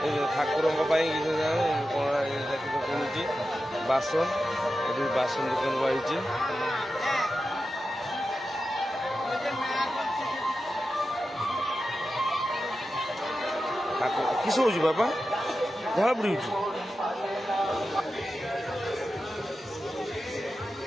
ଠାକୁରଙ୍କ ପାଇଁ କିସ କିଣୁଛି ବାସନ ଏଠି ବାସନ ଦୋକାନ ବାହାରିଛି किस हो बापा झाड़ बुड़ी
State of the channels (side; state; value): both; normal; correlation 0.92